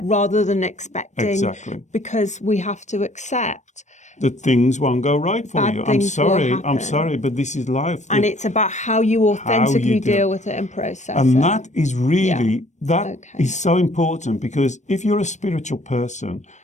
rather than expecting, because we have to accept that things won't go right for you. I'm sorry, but this is life. And it's about how you authentically deal with it and process it. And that is really, is so important, because if you're a spiritual person,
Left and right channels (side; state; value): right; late; 0.34 ms